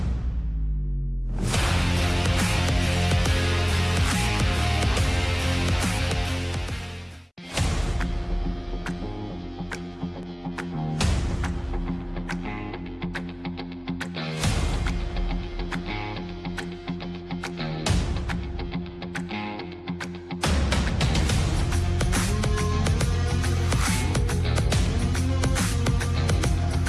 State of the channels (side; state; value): both; identical; correlation 1.00